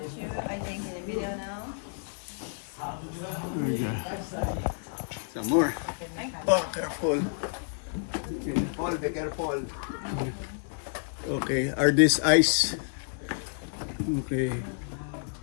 too. I think in the video now. There you go. Some more. Oh, careful. Paul, be careful. Okay, are these ice? Okay.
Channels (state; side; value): silent; right; 55 dB below the other